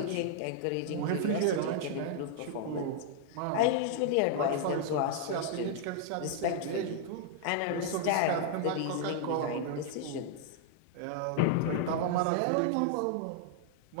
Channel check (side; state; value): both; different; correlation -0.01